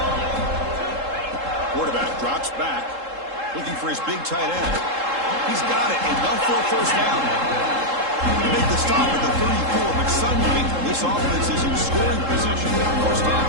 Quarterback drops back, looking for his big tight end. He's got it, enough for a first down. They make the stop at the 34, but suddenly this offense is in scoring position on first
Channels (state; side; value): late; left; 3.7 ms